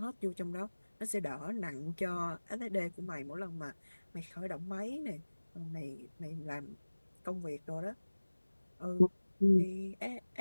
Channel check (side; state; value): both; inverted; correlation -1.00